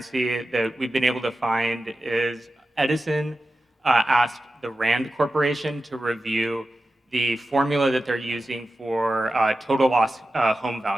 that we've been able to find is Edison asked the Rand Corporation to review the formula that they're using for total loss home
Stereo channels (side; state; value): both; normal; correlation 0.93